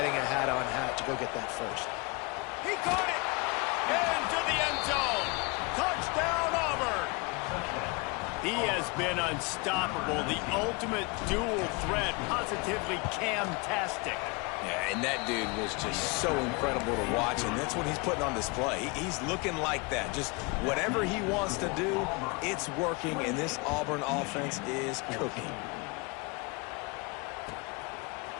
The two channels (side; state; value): right; quieter; 28.7 dB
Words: a hat-on-hat to go get that first. He caught it! Into the end zone! Touchdown, Auburn! He has been unstoppable, the ultimate dual threat, positively Cam-tastic. Yeah, and that dude was just so incredible to watch, and that's what he's putting on display. He's looking like that. Just whatever he wants to do, it's working, and this Auburn offense is cooking.